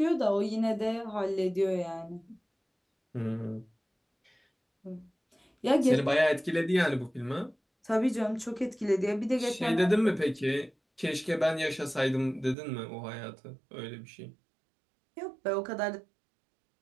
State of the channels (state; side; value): drops out; left; at 12.6 s